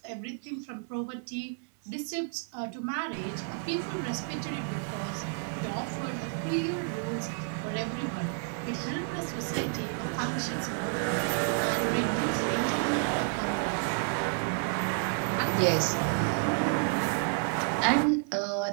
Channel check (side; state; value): left; silent; 57 dB below the other